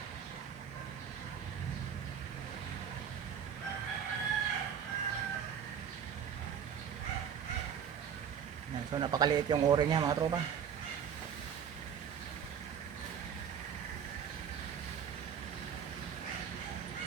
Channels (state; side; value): quieter; left; 7.9 dB